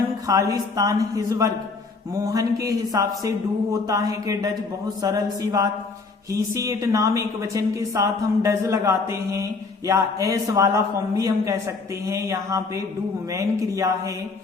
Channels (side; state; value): right; quieter; 4.2 dB